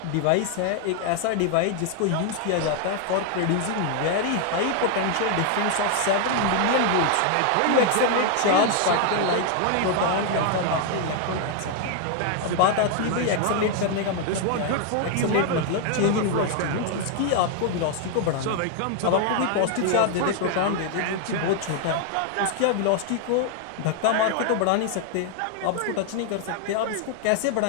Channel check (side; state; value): both; different; correlation 0.00